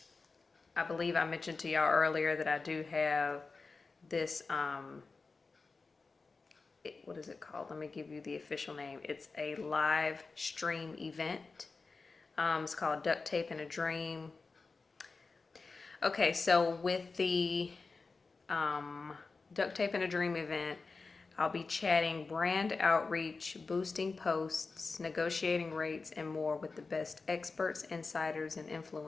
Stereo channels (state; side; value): quieter; right; 4.2 dB